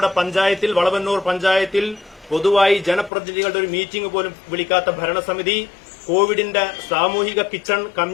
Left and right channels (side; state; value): right; drops out; at 3.1 s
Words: പഞ്ചായത്തിൽ, വളവന്നൂർ പഞ്ചായത്തിൽ പൊതുവായി ജനപ്രതിനിധികളുടെ ഒരു മീറ്റിംഗ് പോലും വിളിക്കാത്ത ഭരണസമിതി കോവിഡിന്റെ സാമൂഹിക കിച്ചൺ,